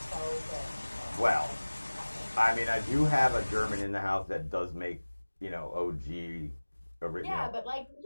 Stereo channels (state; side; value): inverted; both; correlation -1.00